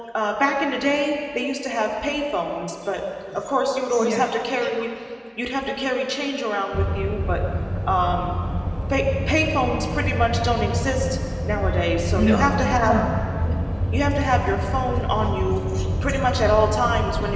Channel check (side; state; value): both; identical; correlation 1.00